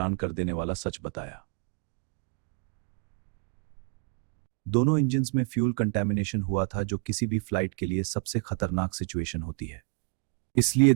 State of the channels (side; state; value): left; quieter; 39.3 dB